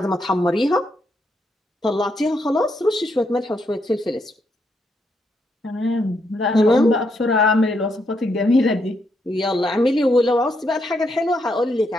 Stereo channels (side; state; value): both; normal; correlation 0.78